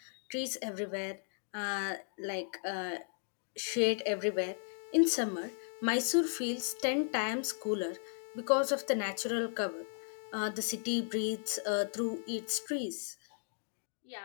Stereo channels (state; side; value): silent; right; digital silence